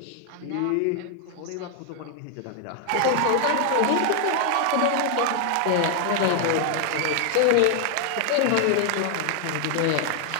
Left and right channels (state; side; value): different; both; correlation 0.00